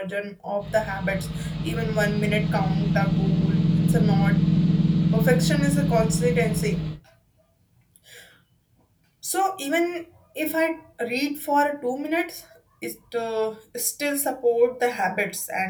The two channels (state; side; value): identical; both; correlation 1.00